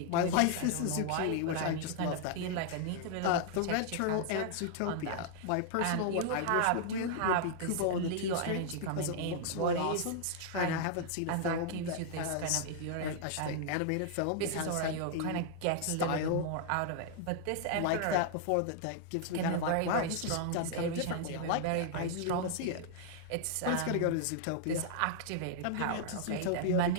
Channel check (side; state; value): both; different; correlation -0.01